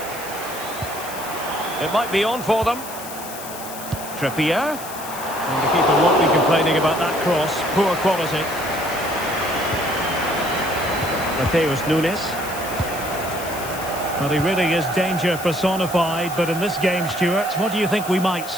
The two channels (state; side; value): noise; left; hiss, 12 dB below the sound